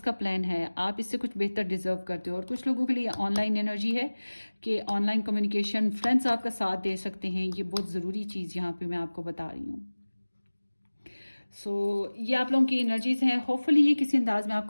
का प्लान है, आप इससे कुछ बेहतर डिजर्व करते हो। और कुछ लोगों के लिए ऑनलाइन एनर्जी है कि ऑनलाइन कम्युनिकेशन, फ्रेंड्स आपका साथ दे सकते हैं। ये बहुत ज़रूरी चीज़ यहाँ पे मैं आपको बता रही हूँ। सो ये आप लोगों की एनर्जीज हैं। होपफुली ये किसी अंदाज में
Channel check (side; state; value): both; inverted; correlation -1.00